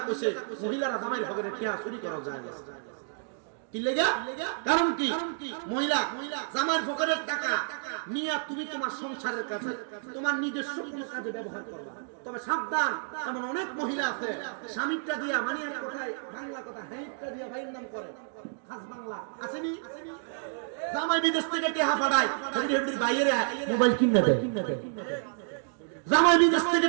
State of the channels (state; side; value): silent; left; digital silence